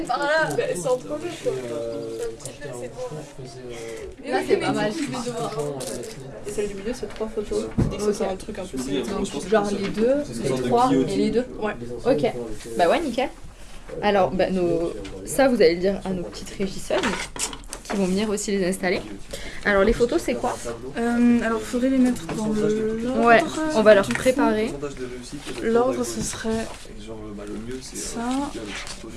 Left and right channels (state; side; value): identical; both; correlation 1.00